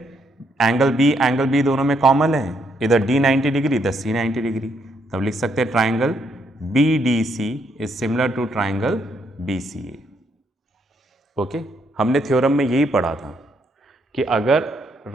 एंगल बी दोनों में कॉमन है, इधर D 90 डिग्री, इधर C 90 डिग्री, तब लिख सकते हैं triangle BDC is similar to triangle BCA, okay. हमने थ्योरम में यही पढ़ा था कि अगर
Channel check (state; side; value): normal; both; correlation 0.74